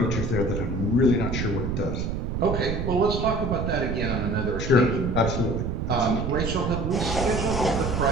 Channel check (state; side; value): noise; right; rumble, 2 dB below the sound